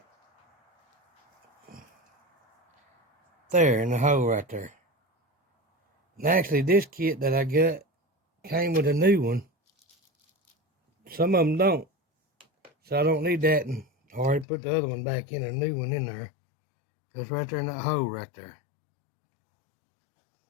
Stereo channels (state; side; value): drops out; right; at 14.5 s